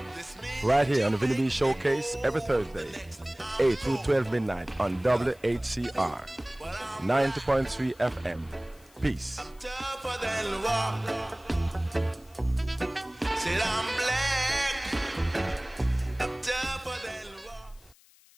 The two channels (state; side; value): noise; left; hiss, 28 dB below the sound